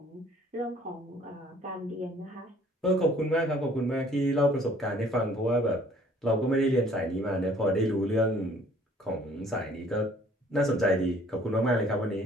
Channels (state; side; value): normal; both; correlation 0.57